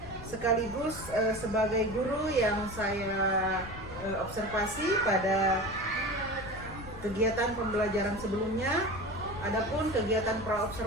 sekaligus sebagai guru yang saya observasi pada kegiatan pembelajaran sebelumnya. Adapun kegiatan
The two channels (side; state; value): left; noise; rumble, 13 dB below the sound